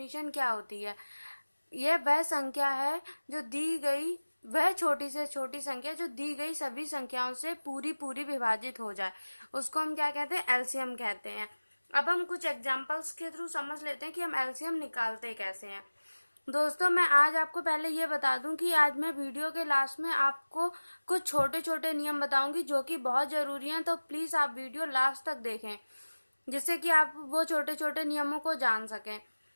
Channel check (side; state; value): both; inverted; correlation -1.00